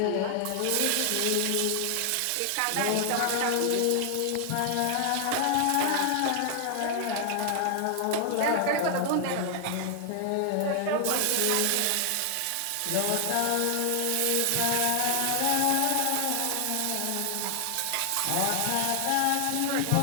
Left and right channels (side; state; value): both; different; correlation 0.00